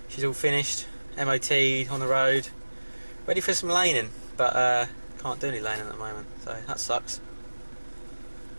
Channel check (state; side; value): inverted; both; correlation -1.00